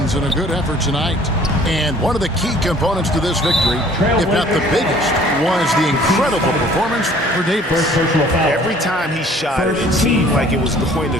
in a good effort tonight. And one of the key components to this victory, if not the biggest, was the incredible performance for Davis. Every time he shot it, it seemed like it was going to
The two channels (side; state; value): both; normal; correlation 0.54